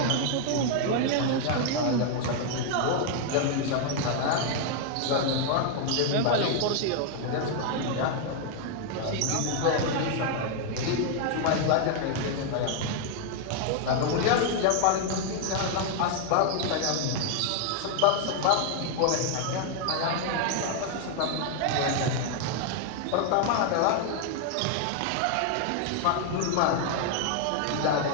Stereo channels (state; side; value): different; both; correlation 0.00